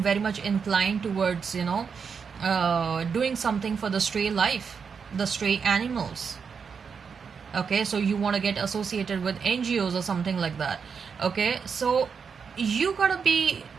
very much inclined towards doing something for the stray life, the stray animals. Okay, so you want to get associated with NGOs or something like that. Okay, so you gotta be,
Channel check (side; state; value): left; quieter; 6.1 dB